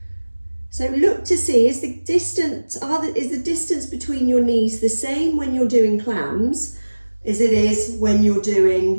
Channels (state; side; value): inverted; both; correlation -1.00